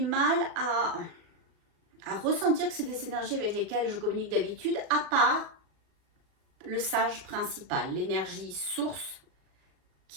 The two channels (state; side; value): late; left; 37 ms